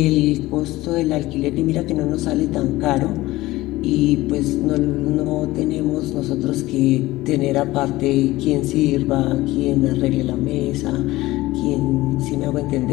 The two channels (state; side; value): quieter; right; 18.1 dB